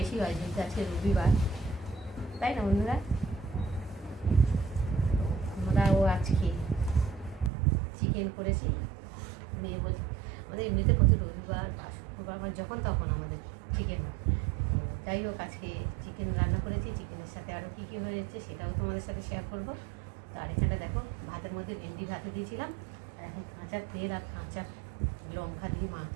হয় যেহেতু আজকে রবিবার, তাই না বন্ধুরা? আমরাও আজকে চিকেন করেছি। নিয়ে বলছি আমাদের এমনিতে প্রতি রবিবার বা শুক্রবার যখন তখন আমাদের চিকেন হয়। যাই হোক, আজকে চিকেন রান্না করেছি। চিকেনের সাথে আরও কী কী হয়েছে সেটাও তোমাদের সাথে শেয়ার করবো। তো আর এখানটা দেখো, ভাতের মধ্যে ভেন্ডি ভাতে দিয়েছিলাম, আর এখন কাঁচা তেল আর কাঁচা লঙ্কা দিয়ে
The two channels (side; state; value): left; drops out; at 7.5 s